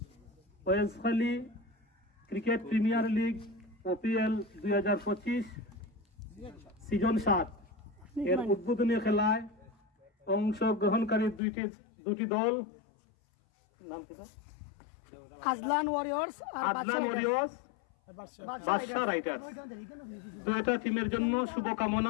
ওয়েলসখালী cricket premier league ওপিএল 2025 season 7 এর উদ্বোধনী খেলায় অংশগ্রহণকারী দুটি দল নাম কি? আজলান ওয়ারিয়র্স আর বাদশা রাইডার্স। দুইটা টিমের জন্য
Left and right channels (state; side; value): drops out; right; at 11.4 s